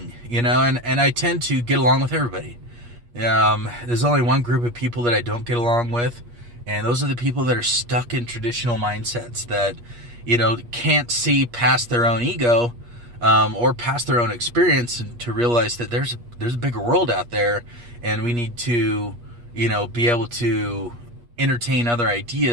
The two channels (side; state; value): left; late; 8.4 ms